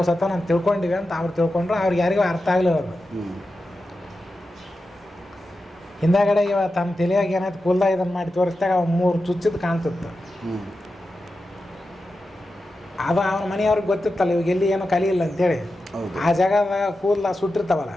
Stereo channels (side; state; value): both; normal; correlation 0.91